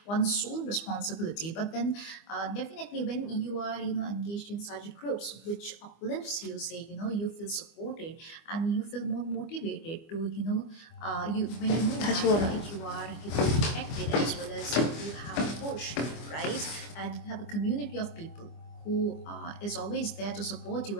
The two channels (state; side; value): late; right; 25 ms